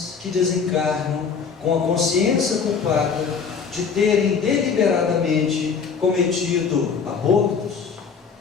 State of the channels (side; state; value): right; quieter; 5.9 dB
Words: que desencarnam com a consciência culpada de terem deliberadamente cometido abortos,